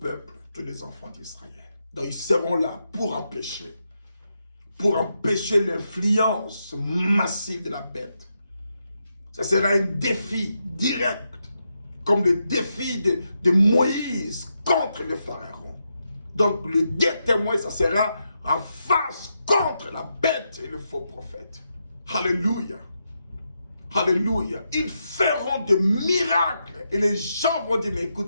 tous les enfants d'Israël. Donc ils seront là pour empêcher l'influence massive de la bête. Ça sera un défi direct, comme le défi de Moïse contre le pharaon. Donc le deux témoins, ça sera en face contre la bête et le faux prophète. Alléluia. Alléluia. Ils feront des miracles et les gens vont dire, mais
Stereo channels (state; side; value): inverted; both; correlation -0.84